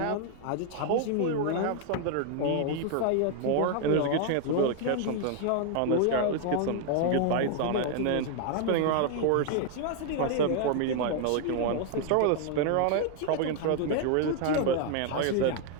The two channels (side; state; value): both; different; correlation 0.00